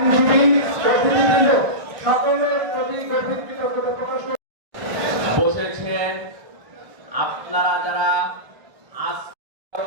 সকলের প্রতি গভীর কৃতজ্ঞতা প্রকাশ বসেছেন। আপনারা যারা আজ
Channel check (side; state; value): left; late; 1.5 ms